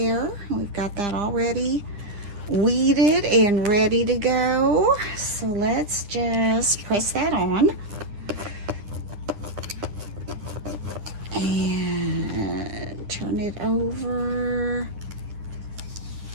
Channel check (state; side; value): late; left; 9.9 ms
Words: We've got that already weeded and ready to go. So let's just press that on. And turn it over.